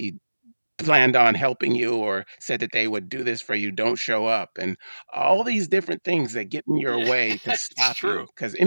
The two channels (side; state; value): both; inverted; correlation -1.00